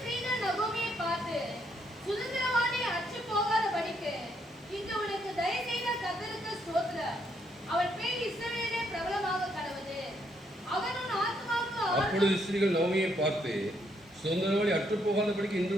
நகோமியை பார்த்து, சுதந்திரவாளி அற்று போகாதபடிக்கு இன்று உனக்கு தயவு செய்த கர்த்தருக்கு ஸ்தோத்திரம். அவன் பேர் இஸ்ரவேலிலே பிரபலமாக கடவுது. அவன் உன் ஆத்மாவுக்கு. அப்பொழுது ஸ்திரீகள் நவமியை பார்த்து, சுதந்திரவாளி அற்று போகாதபடிக்கு இன்று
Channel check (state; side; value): normal; both; correlation 0.74